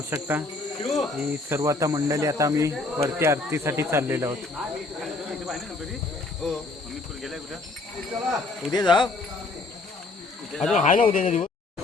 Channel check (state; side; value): quieter; right; 3.4 dB